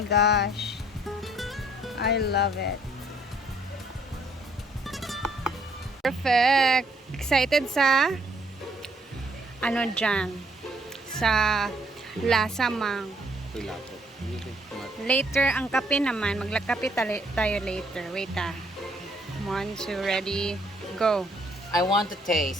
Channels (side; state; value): both; normal; correlation 0.66